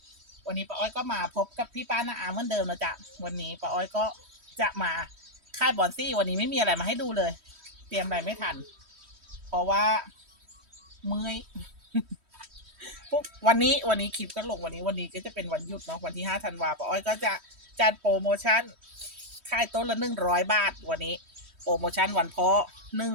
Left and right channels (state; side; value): late; left; 3.1 ms